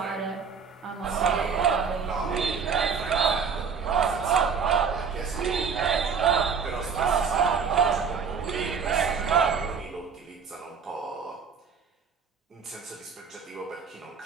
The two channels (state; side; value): quieter; left; 6.1 dB